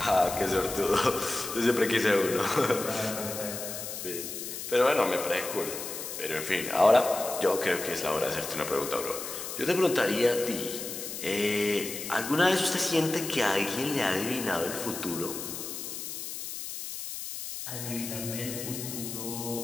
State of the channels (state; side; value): noise; left; hiss, 7 dB below the sound